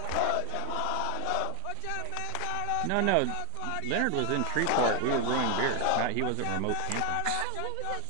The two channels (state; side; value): different; both; correlation 0.01